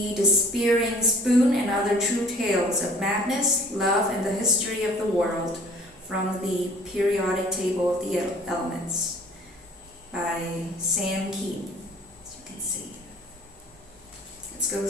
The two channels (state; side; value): normal; both; correlation 0.50